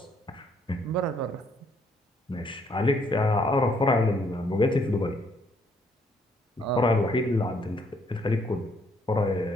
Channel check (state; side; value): normal; both; correlation 0.69